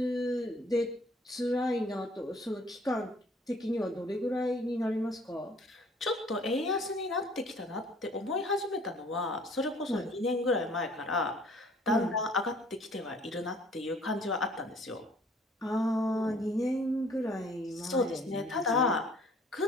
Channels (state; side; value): normal; both; correlation 0.56